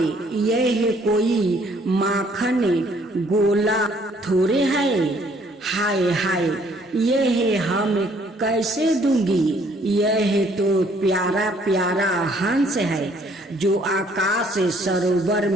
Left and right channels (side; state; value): both; normal; correlation 0.63